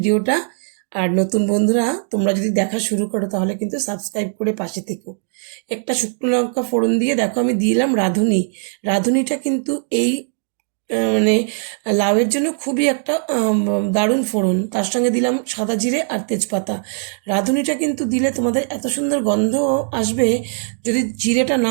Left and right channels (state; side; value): silent; left; 66 dB below the other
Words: আর নতুন বন্ধুরা তোমরা যদি দেখা শুরু করো তাহলে কিন্তু সাবস্ক্রাইব করে পাশে থেকো। একটা শুকনো লঙ্কা ফোড়ন দিয়ে দেখো আমি দিলাম রাঁধুনি। রাঁধুনিটা কিন্তু এই মানে লাউয়ের জন্য খুবই একটা দারুণ ফোড়ন। তার সঙ্গে দিলাম সাদা জিরে আর তেজপাতা। রাঁধুনিটা কিন্তু দিলে তোমাদের এত সুন্দর গন্ধ আসবে, যদি জিরেটা